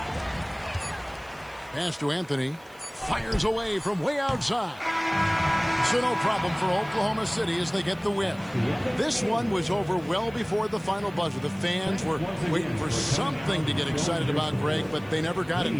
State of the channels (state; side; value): noise; right; hiss, 28 dB below the sound